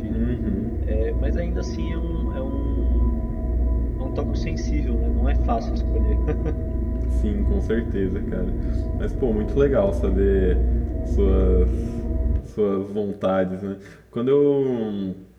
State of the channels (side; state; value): both; identical; correlation 1.00